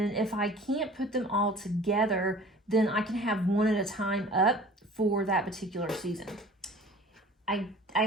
if I can't put them all together, then I can have one at a time up for that particular season. I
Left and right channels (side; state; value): both; normal; correlation 0.45